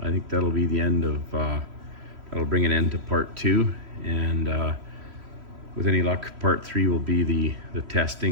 I think that'll be the end of, that'll bring an end to part 2, and with any luck part 3 will be the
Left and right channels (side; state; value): left; late; 3.1 ms